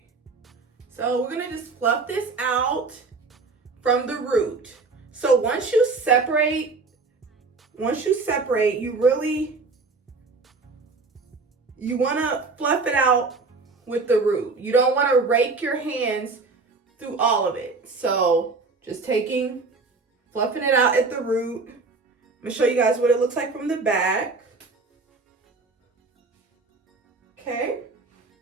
So we're gonna just fluff this out from the root. So once you separate, you wanna fluff it out with the root. You don't wanna rake your hands through all of it. So just fluffing it out at the root. I'm gonna show you guys what it looks like from the back. Okay.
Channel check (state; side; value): quieter; left; 4.0 dB